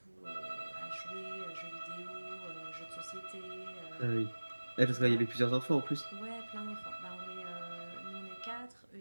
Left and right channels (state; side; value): inverted; both; correlation -1.00